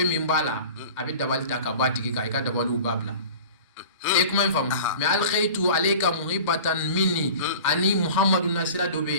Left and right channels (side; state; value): both; inverted; correlation -0.41